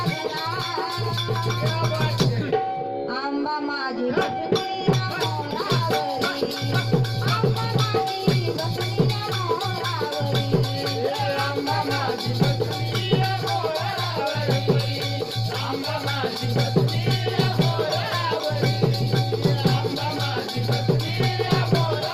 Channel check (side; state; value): both; identical; correlation 1.00